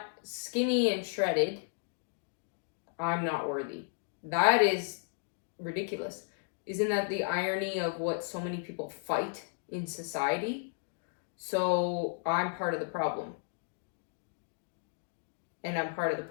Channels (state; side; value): silent; right; digital silence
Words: skinny and shredded, I'm not worthy. That is ridiculous. Isn't that the irony of what so many people fight in society? So I'm part of the problem. And I'm part of the